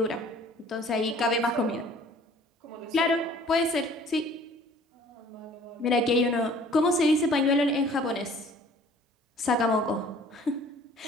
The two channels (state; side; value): normal; both; correlation 0.52